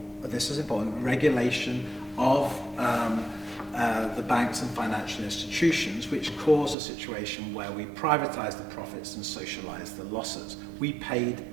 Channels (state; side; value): drops out; left; at 6.8 s